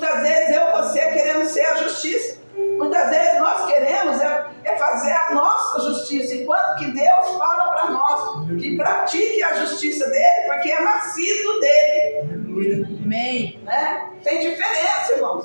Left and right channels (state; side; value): inverted; both; correlation -1.00